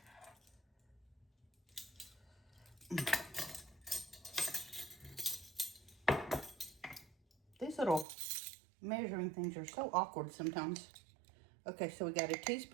These little measuring things are so awkward sometimes. Okay, so we got a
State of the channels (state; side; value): drops out; left; at 8.1 s